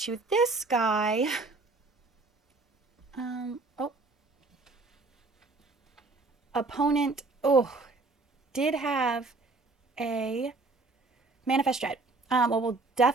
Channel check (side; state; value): left; quieter; 3.5 dB